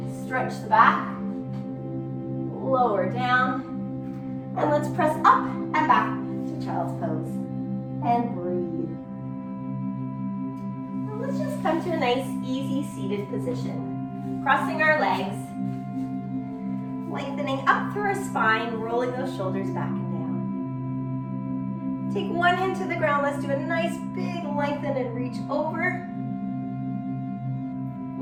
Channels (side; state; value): both; identical; correlation 1.00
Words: stretch the back, lower down, and let's press up and back to child's pose, and breathe. And let's just come to a nice, easy seated position, crossing our legs, lengthening up through our spine, rolling those shoulders back and down. Take one hand to the ground. Let's do a nice big lengthen and reach over.